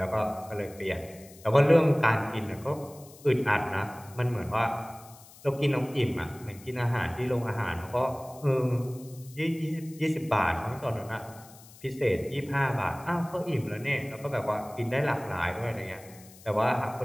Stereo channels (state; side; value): noise; left; hiss, 22 dB below the sound